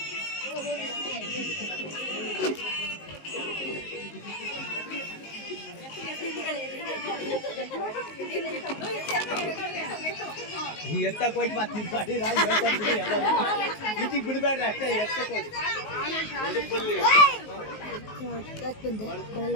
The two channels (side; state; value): right; late; 19 ms